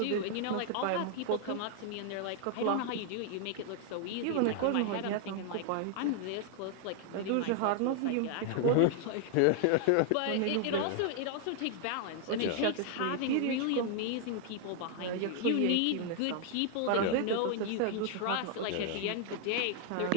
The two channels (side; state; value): both; different; correlation 0.00